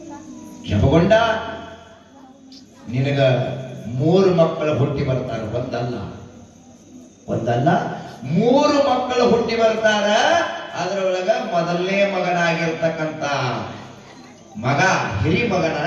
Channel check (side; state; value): both; identical; correlation 1.00